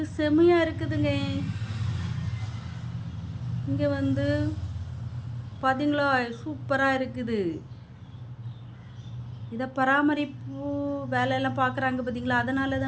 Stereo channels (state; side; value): identical; both; correlation 1.00